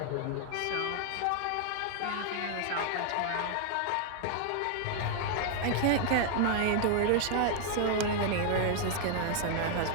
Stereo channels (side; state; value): both; different; correlation 0.00